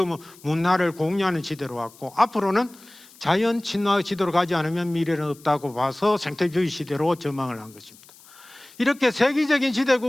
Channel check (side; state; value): left; noise; hiss, 24 dB below the sound